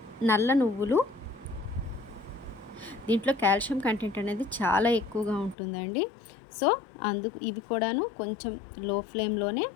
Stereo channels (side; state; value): right; drops out; at 5.6 s